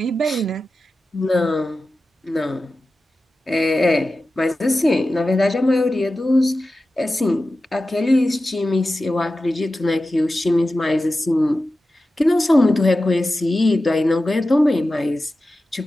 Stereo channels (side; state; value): both; normal; correlation 0.94